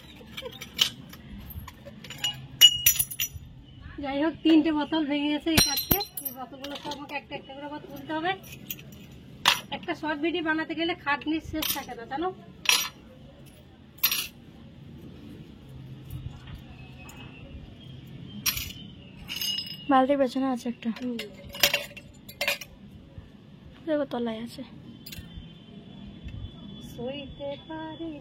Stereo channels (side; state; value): both; identical; correlation 1.00